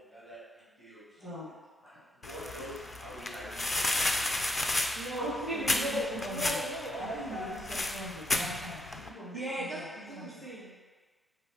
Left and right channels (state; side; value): normal; both; correlation 0.77